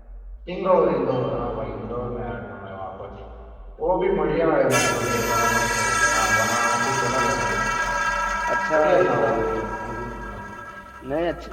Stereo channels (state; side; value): identical; both; correlation 1.00